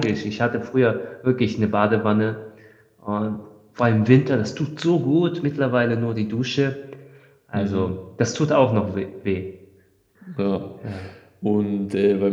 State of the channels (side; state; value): both; identical; correlation 1.00